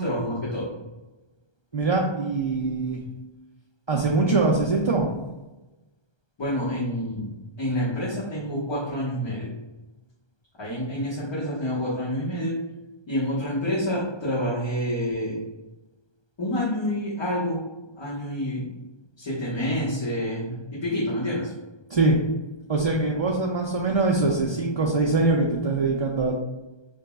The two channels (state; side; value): late; right; 1.3 ms